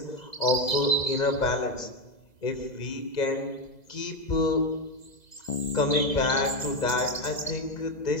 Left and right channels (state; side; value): late; right; 2.0 ms